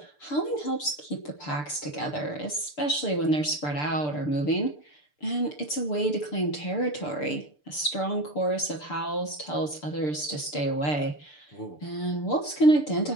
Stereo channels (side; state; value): right; late; 6.8 ms